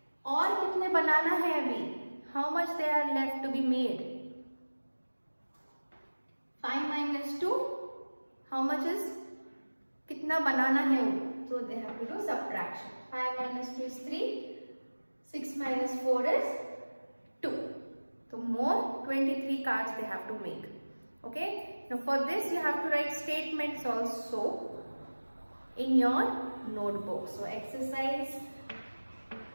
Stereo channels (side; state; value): both; inverted; correlation -1.00